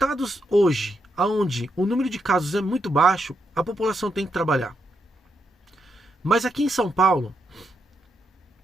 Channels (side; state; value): both; normal; correlation 0.81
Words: hoje, onde o número de casos é muito baixo, a população tem que trabalhar. Mas aqui em São Paulo,